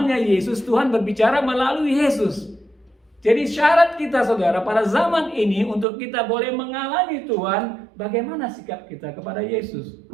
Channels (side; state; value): left; drops out; at 5.9 s